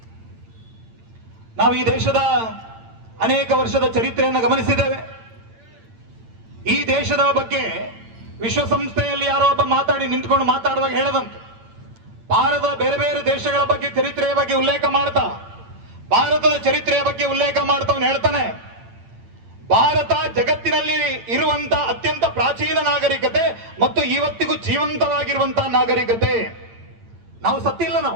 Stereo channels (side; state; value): left; late; 8.9 ms